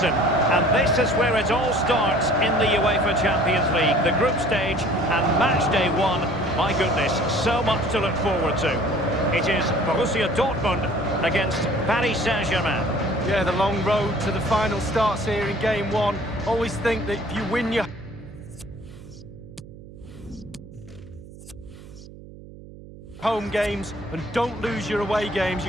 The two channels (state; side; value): noise; right; hum, 17 dB below the sound